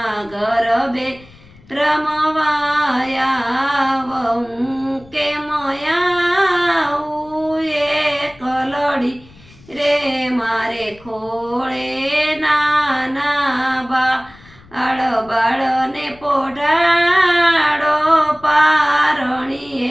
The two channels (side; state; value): left; noise; rumble, 25 dB below the sound